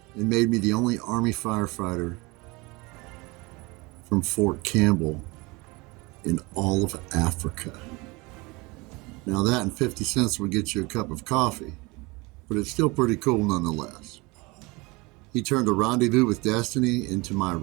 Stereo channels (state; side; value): quieter; left; 24.9 dB